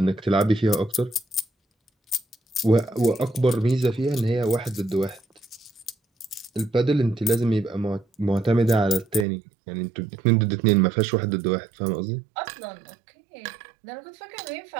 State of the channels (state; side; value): drops out; left; at 9.2 s